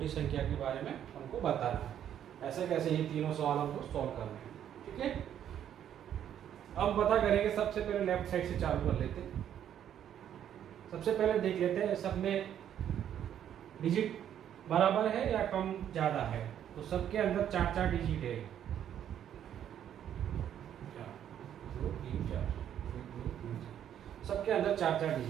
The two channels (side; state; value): left; quieter; 10.0 dB